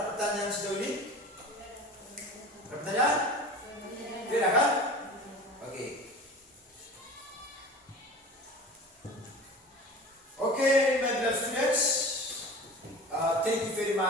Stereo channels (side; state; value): both; normal; correlation 0.37